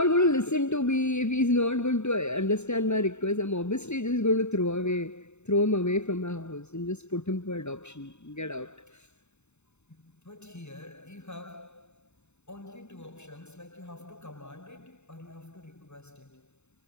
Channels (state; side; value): late; right; 0.82 ms